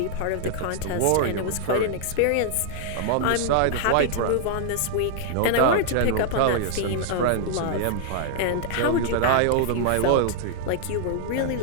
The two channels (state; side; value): different; both; correlation -0.01